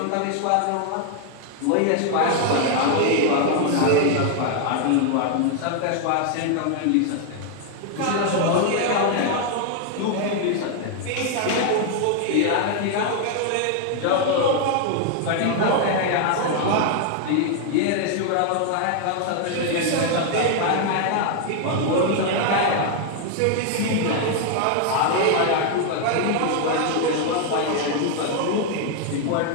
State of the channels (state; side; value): different; both; correlation 0.00